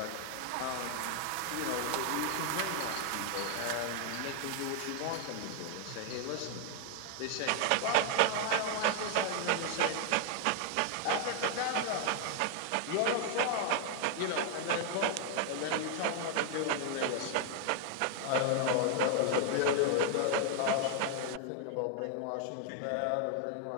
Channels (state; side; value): different; both; correlation 0.00